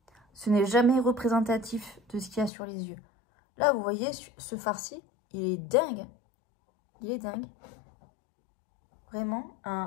ce n'est jamais représentatif de ce qu'il y a sur les yeux. Là, vous voyez, ce fard-ci, il est dingue. Il est dingue. Vraiment,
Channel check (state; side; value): drops out; right; at 2.5 s